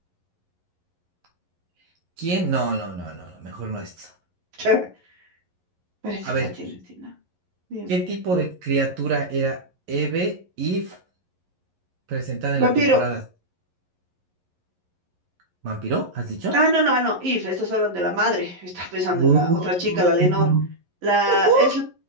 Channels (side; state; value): left; late; 11 ms